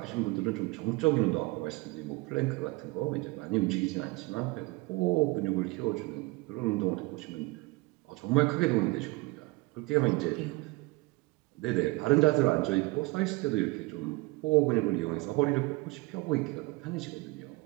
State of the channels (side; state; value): left; quieter; 23.1 dB